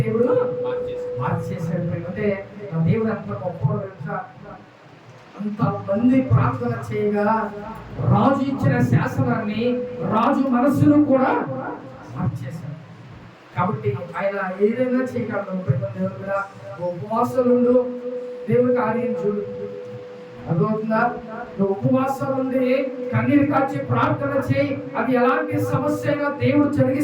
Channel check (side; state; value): both; identical; correlation 1.00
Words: మార్చేసాడు. అంటే దేవుడు అంత గొప్ప, అంత మంది ప్రార్థన చేయగా రాజు ఇచ్చిన శాసనాన్ని రాజు మనస్సును కూడా మార్చేశాడు. కాబట్టి ఆయన ఏదైనా చేయగలడు. దేవుడు కూడా ఉపవాసాలు దేవుడి కార్యం చూడు. అర్థమవుతుందా? నువ్వు ఉపవాసాలు ఉండి కన్నీరు కాచి ప్రార్థన చేయి, అది ఎలాంటి సమస్యగా దేవుడు